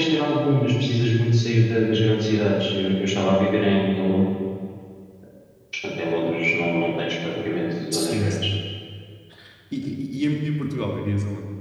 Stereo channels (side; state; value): both; identical; correlation 1.00